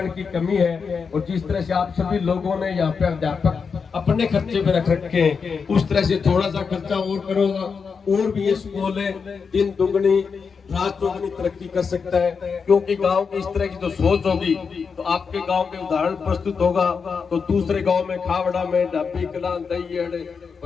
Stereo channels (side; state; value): right; quieter; 5.6 dB